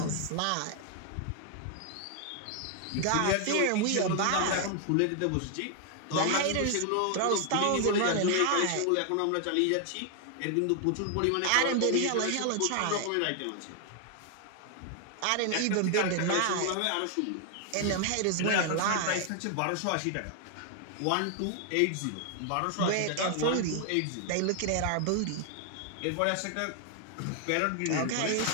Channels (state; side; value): different; both; correlation 0.00